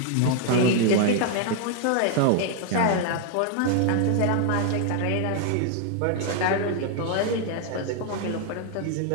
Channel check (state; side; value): different; both; correlation 0.00